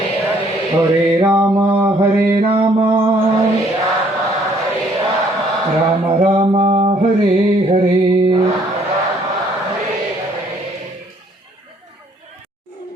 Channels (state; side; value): normal; both; correlation 0.63